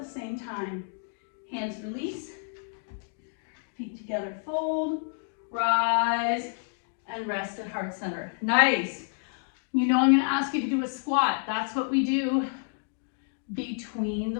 same time. Hands release. Feet together, fold. Rise and rest at heart center. Nice. You know I'm going to ask you to do a squat. That's what we do between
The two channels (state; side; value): silent; right; digital silence